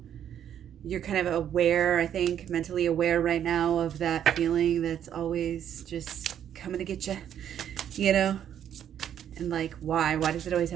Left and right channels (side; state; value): left; quieter; 9.8 dB